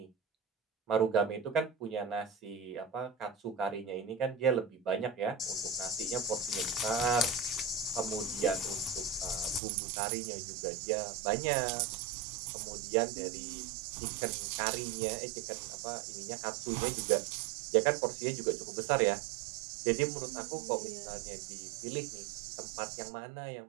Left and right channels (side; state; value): left; drops out; at 9.6 s